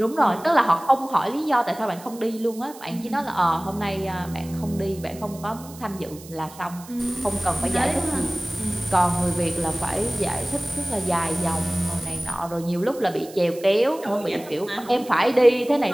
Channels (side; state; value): right; noise; hiss, 19 dB below the sound